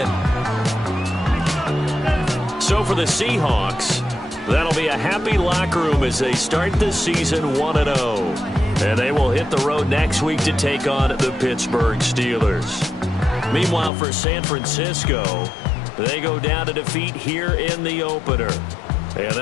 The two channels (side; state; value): right; drops out; at 13.9 s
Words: So for the Seahawks, that'll be a happy locker room as they start the season 1-0. And they will hit the road next week to take on the Pittsburgh Steelers. Meanwhile, for San Francisco, they go down to defeat here in the opener. And